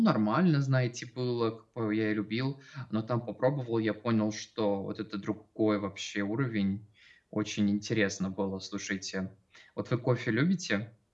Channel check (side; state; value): both; identical; correlation 1.00